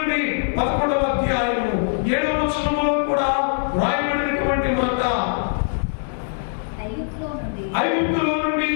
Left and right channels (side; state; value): right; silent; digital silence